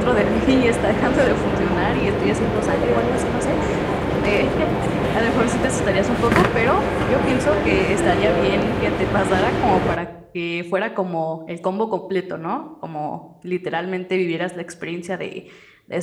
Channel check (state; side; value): identical; both; correlation 1.00